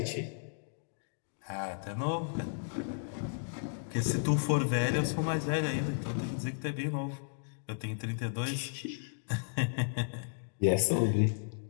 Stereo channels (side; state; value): right; silent; digital silence